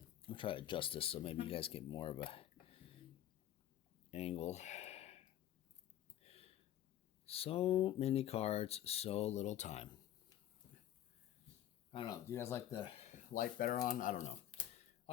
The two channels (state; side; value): quieter; right; 11.9 dB